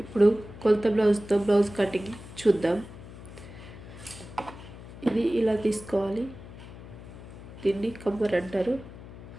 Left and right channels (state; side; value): noise; left; hum, 15 dB below the sound